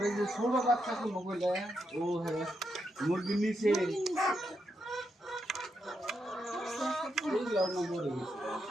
এই যে ছোট বাচ্চা গুলো বলে ও হ্যাঁ মুরগির নিচে এইগুলো না মরে গেছে।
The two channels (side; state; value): both; normal; correlation 0.83